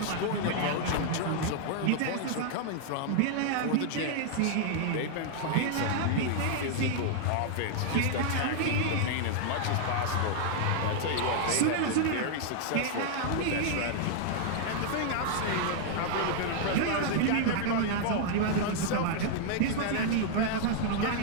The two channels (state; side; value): different; both; correlation 0.00